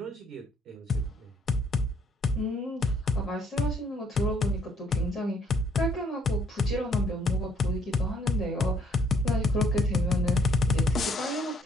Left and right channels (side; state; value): both; normal; correlation 0.66